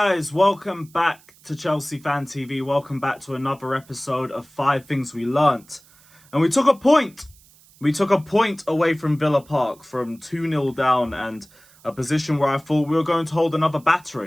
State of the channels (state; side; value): noise; right; hiss, 27 dB below the sound